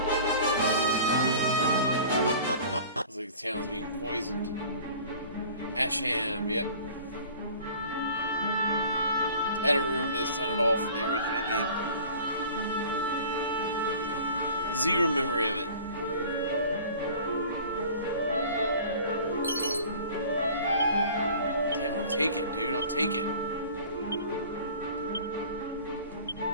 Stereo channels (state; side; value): inverted; both; correlation -0.45